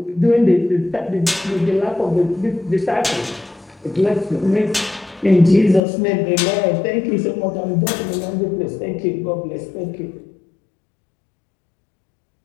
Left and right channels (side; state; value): right; drops out; at 5.8 s